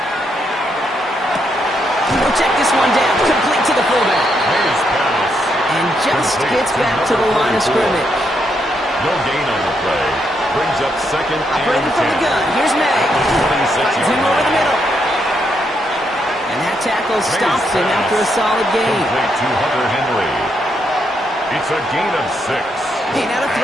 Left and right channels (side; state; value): both; normal; correlation 0.78